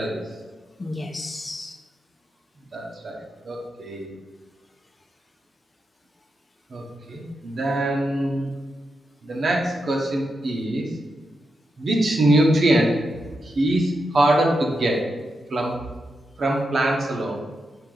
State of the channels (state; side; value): normal; both; correlation 0.86